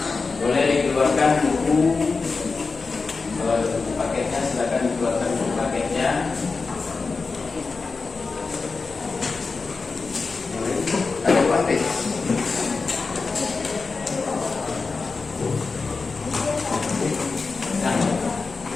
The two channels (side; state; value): right; quieter; 4.3 dB